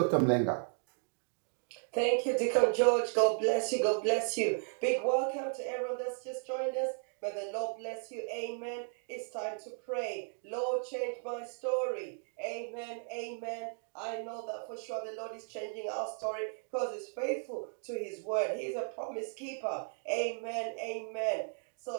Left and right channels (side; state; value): left; silent; 54 dB below the other